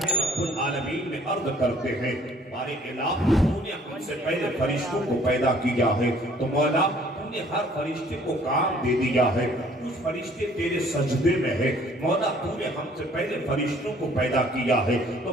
رب العالمین میں عرض کرتے ہیں، بارے الہ تو نے ہم سے پہلے فرشتوں کو پیدا کیا ہے، تو مولا تو نے ہر فرشتے کو کام دے دیا ہے، کچھ فرشتے تیرے سجدے میں ہے. مولا تو نے ہم سے پہلے فرشتوں کو پیدا کیا ہے،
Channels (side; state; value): both; normal; correlation 0.57